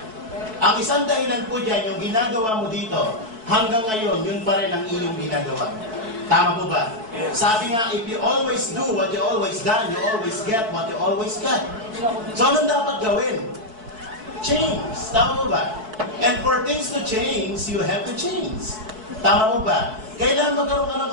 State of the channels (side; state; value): left; late; 4.6 ms